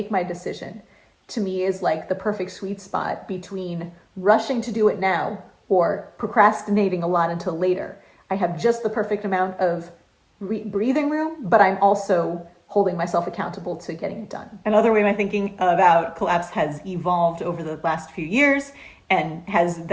my decision, to me is like the perfect sweet spot between rushing to do it now or procrastinating a lot until later. I have just the perfect amount of breathing room, but I'm also holding myself accountable to getting it done. Another way my thinking about collapse has evolved over the last few years and has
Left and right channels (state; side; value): identical; both; correlation 1.00